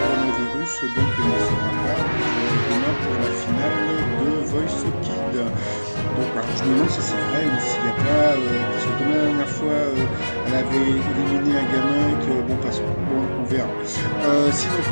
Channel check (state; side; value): inverted; both; correlation -1.00